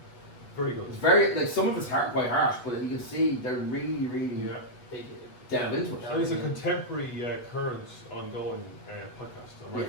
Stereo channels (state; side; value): late; right; 8.1 ms